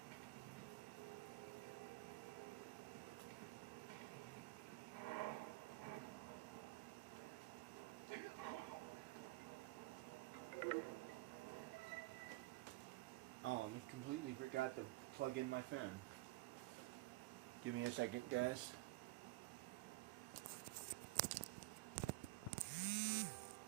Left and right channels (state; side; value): quieter; left; 19.3 dB